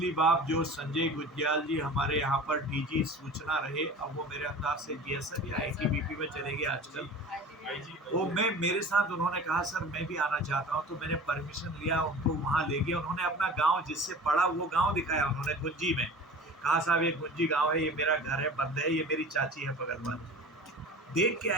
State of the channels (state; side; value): normal; both; correlation 0.38